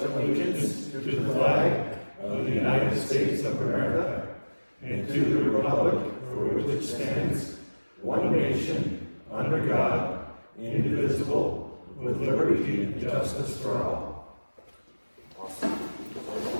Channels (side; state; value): both; inverted; correlation -1.00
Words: allegiance to the flag of the United States of America and to the republic for which it stands, one nation, under God, indivisible, with liberty and justice for all. Awesome.